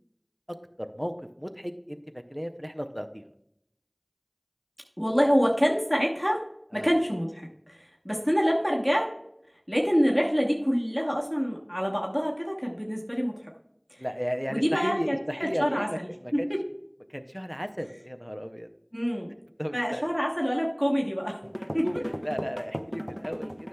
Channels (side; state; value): both; identical; correlation 1.00